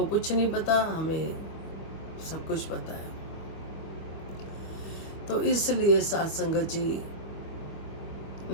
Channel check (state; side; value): late; right; 25 ms